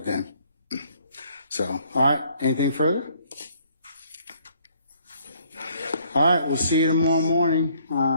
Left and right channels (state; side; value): inverted; both; correlation -0.64